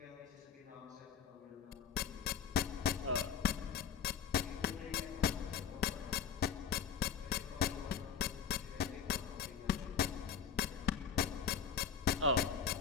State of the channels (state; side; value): quieter; right; 7.3 dB